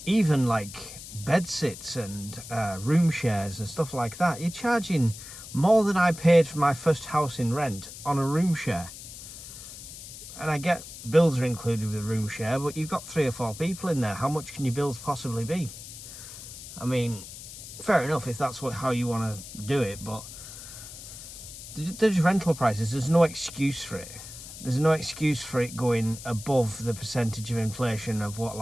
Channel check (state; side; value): noise; left; hiss, 13 dB below the sound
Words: Even like bedsits and room shares and stuff like that, you're charging more than I paid for my first house in rent on a room share. And I get bills are included with the room share, but you've got 3 or 4 people in there. How much can your bills possibly be? I mean, fair enough if that's how you want to do it, but there's rental prices. There's no excuse for it. There's no excuse for it going above the percentage of inflation of what